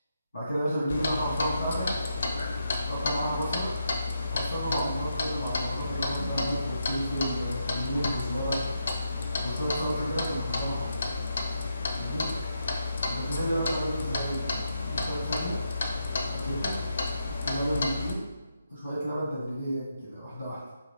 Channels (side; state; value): both; inverted; correlation -0.82